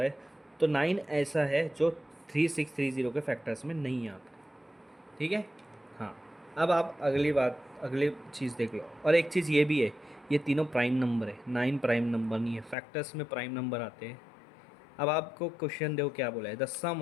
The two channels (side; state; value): right; drops out; at 12.8 s